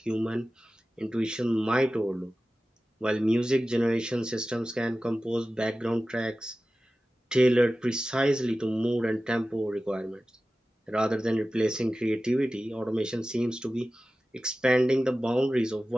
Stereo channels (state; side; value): normal; both; correlation 0.95